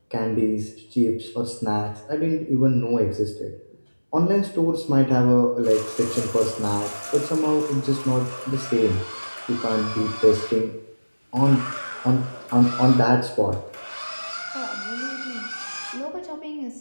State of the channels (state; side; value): inverted; both; correlation -1.00